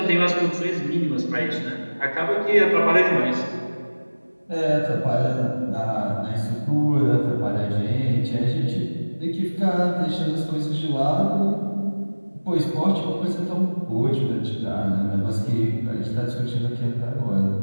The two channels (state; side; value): inverted; both; correlation -1.00